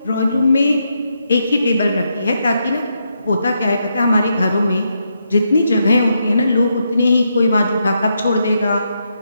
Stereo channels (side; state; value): both; inverted; correlation -0.81